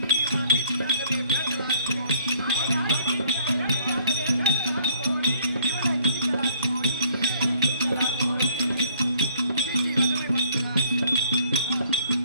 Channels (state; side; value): inverted; both; correlation -0.60